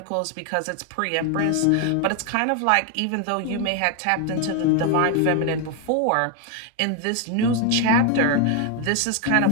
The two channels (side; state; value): both; different; correlation 0.01